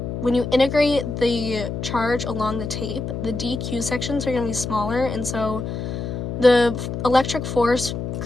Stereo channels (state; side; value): noise; left; hum, 5 dB below the sound